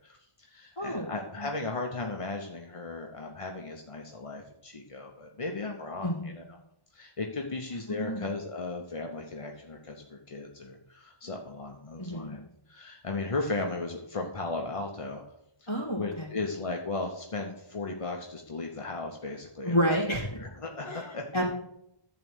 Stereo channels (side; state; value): right; late; 1.3 ms